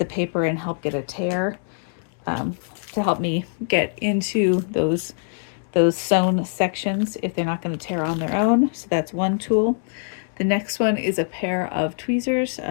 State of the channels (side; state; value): right; silent; digital silence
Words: paper and help get a tear, um, to help me get into those sewn sections if they're not going to tear on their own. So that's one tool. The next one is a pair of tweezers.